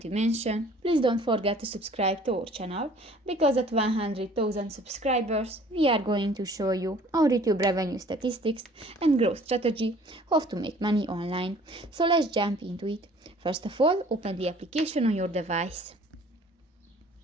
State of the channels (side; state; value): both; normal; correlation 0.52